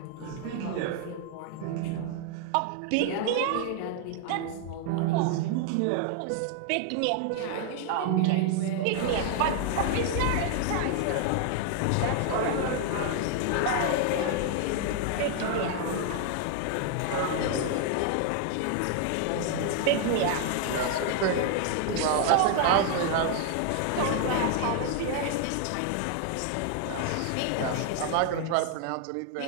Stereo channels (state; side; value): different; both; correlation 0.00